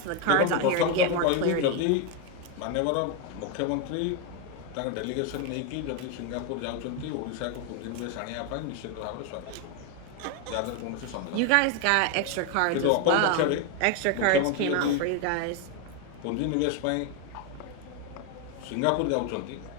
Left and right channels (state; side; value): different; both; correlation 0.02